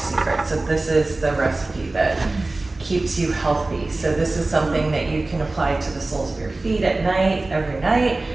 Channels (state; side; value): quieter; left; 3.1 dB